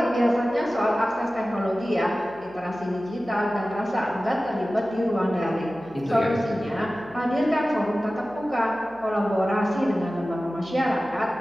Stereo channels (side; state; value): right; noise; hum, 26 dB below the sound